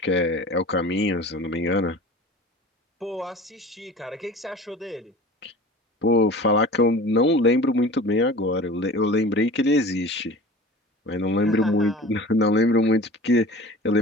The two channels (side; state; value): both; normal; correlation 0.39